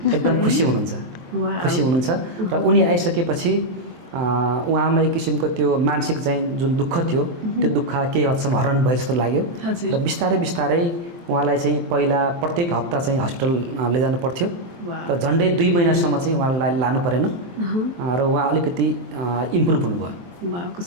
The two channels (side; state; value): left; late; 23 ms